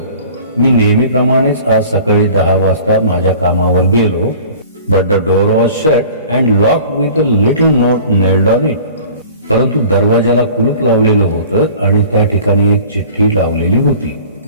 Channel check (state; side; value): inverted; both; correlation -0.45